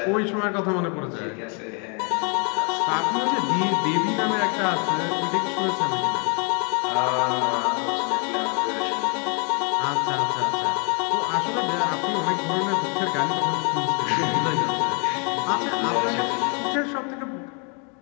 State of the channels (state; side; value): quieter; right; 36.5 dB